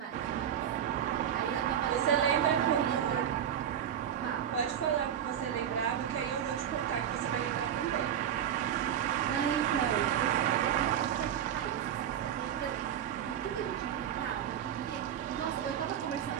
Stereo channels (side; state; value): left; quieter; 9.7 dB